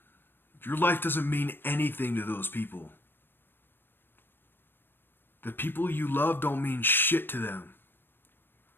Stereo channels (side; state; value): right; late; 0.098 ms